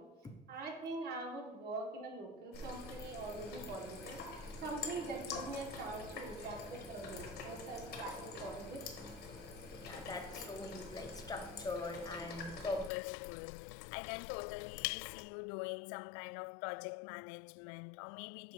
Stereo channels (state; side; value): drops out; right; at 12.9 s